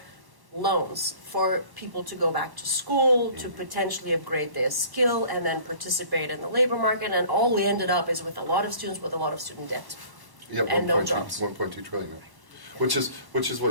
people to go back to school, to potentially upgrade their skill, and then participate in the labor market. And all we ended up is with a lot of students with a lot of student debt. Yeah, and no jobs. 1.2 trillion. Which is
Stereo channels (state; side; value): late; left; 1.1 ms